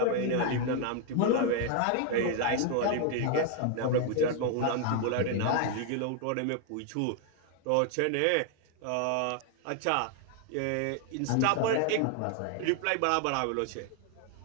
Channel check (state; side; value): different; both; correlation 0.00